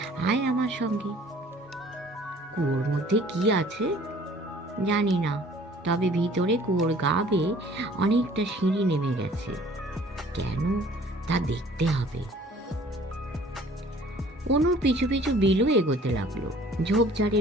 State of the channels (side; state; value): both; normal; correlation 0.53